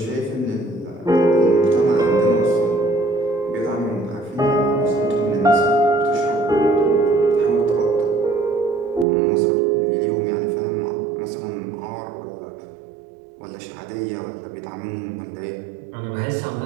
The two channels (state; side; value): drops out; left; at 9.1 s